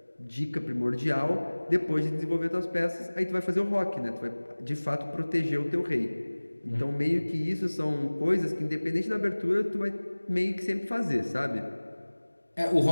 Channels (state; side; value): inverted; both; correlation -1.00